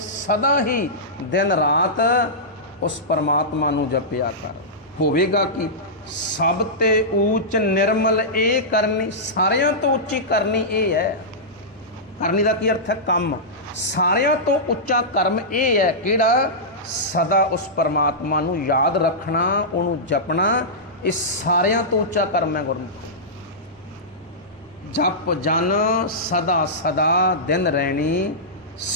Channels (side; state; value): both; normal; correlation -0.14